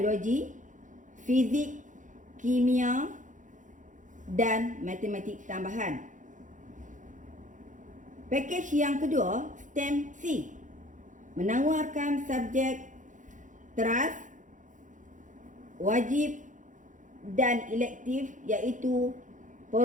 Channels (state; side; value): late; left; 0.37 ms